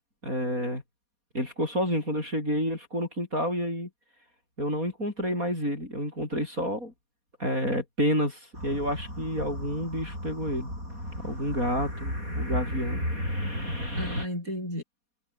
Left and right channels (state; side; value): late; left; 4.2 ms